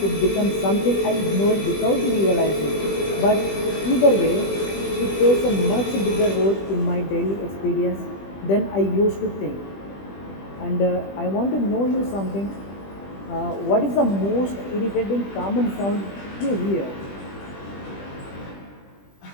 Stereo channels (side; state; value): right; late; 20 ms